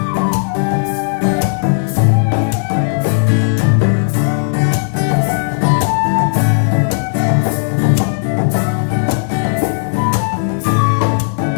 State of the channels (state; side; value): silent; right; digital silence